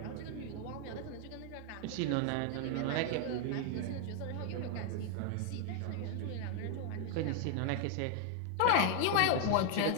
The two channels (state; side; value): different; both; correlation 0.00